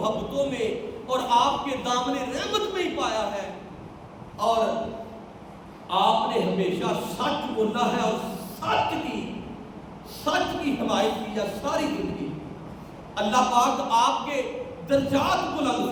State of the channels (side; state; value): both; identical; correlation 1.00